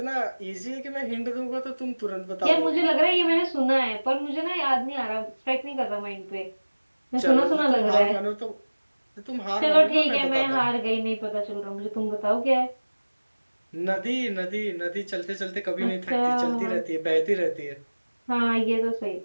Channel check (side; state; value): both; inverted; correlation -1.00